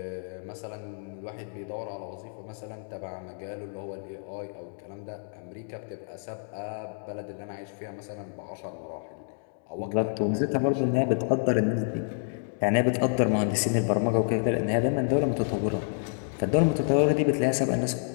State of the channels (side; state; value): right; silent; digital silence